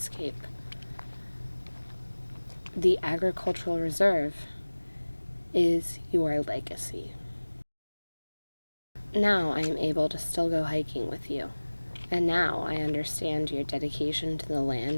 The Agricultural Reserve is your legacy. Now I am able to still go hiking with you, and now I understand your dedication to the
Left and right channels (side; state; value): both; inverted; correlation -1.00